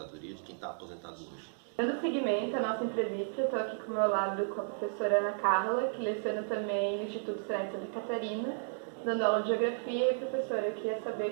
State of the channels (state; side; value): silent; left; digital silence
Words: de quem está aposentado hoje. Dando seguimento à nossa entrevista, estou aqui com o meu lado com a professora Ana Carla, que leciona também no Instituto Senai de Santa Catarina, dando aula de Geografia. E, professora, eu queria saber,